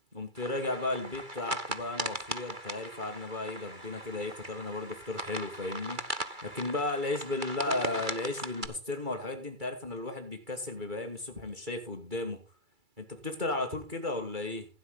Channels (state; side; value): late; left; 2.3 ms